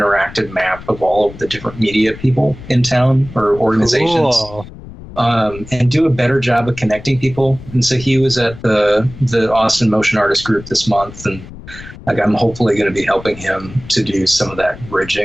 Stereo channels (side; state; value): left; noise; rumble, 16 dB below the sound